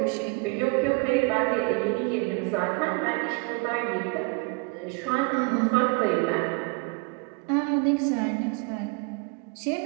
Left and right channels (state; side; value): quieter; left; 31.9 dB